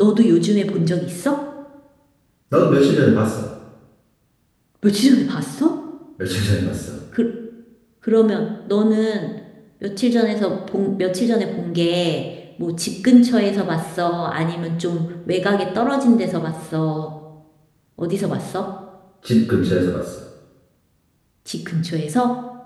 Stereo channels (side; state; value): both; identical; correlation 1.00